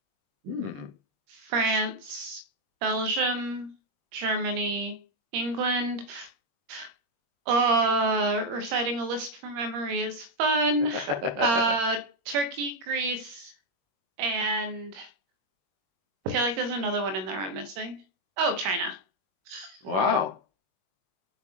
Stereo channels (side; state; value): left; late; 21 ms